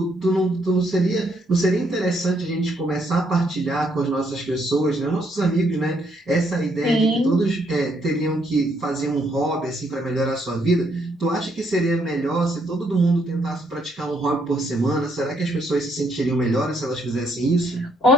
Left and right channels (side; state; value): both; normal; correlation 0.72